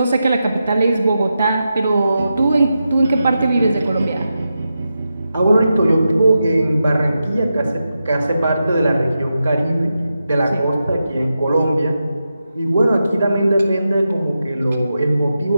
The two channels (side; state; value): both; inverted; correlation -0.89